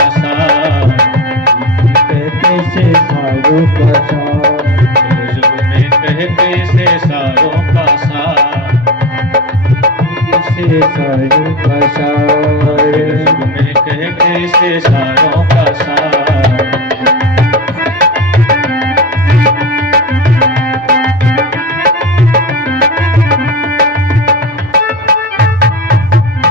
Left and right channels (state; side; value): normal; both; correlation 0.23